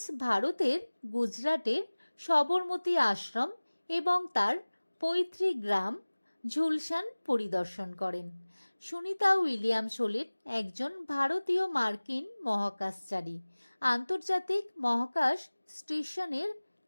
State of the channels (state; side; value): inverted; both; correlation -1.00